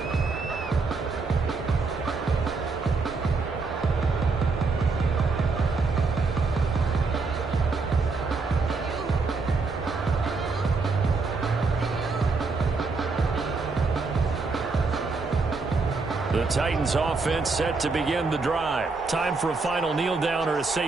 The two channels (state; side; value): quieter; left; 4.1 dB